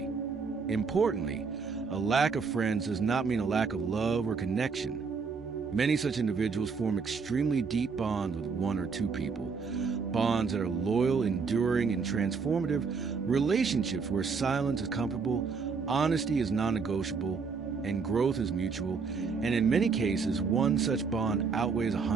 Importantly, a lack of friends does not mean a lack of love or connection. Many such individuals form extremely deep bonds with one or two people, bonds that are loyal, enduring, and transformative, relationships where silence is comfortable, honesty is non-negotiable, and growth is mutual, and in many cases, one such bond outweighs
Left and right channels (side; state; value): left; quieter; 5.2 dB